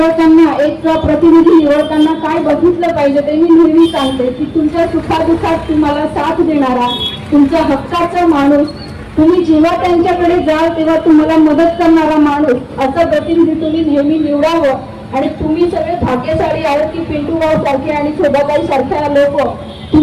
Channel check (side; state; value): both; identical; correlation 1.00